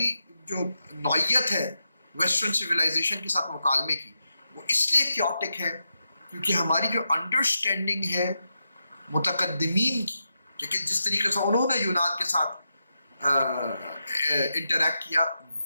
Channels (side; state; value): both; inverted; correlation -0.87